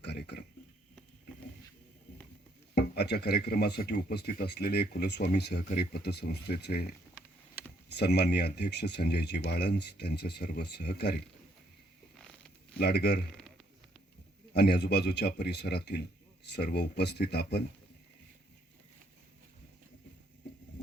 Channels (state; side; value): normal; both; correlation 0.70